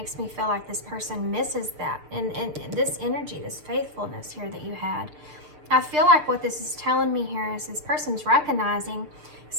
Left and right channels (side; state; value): left; late; 6.6 ms